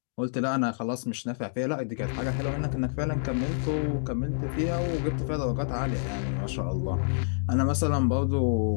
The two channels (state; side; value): silent; right; digital silence